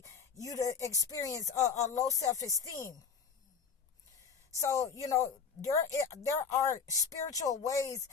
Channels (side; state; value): right; quieter; 6.2 dB